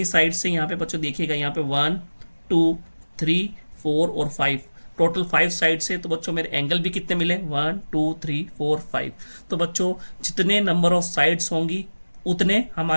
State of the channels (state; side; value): inverted; both; correlation -1.00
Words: साइड से यहाँ पे बच्चों देखिएगा, यहाँ पे 1 2 3 4 और 5, टोटल 5 साइड से। तो बच्चों मेरे एंगल भी कितने मिले, 1 2 3 4 5। तो बच्चों जितने नंबर ऑफ साइड्स होंगी उतने